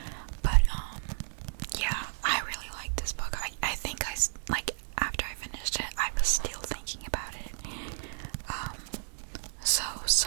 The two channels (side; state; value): left; silent; digital silence